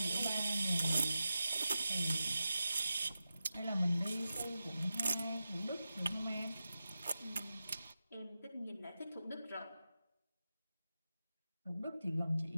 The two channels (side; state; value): both; inverted; correlation -0.92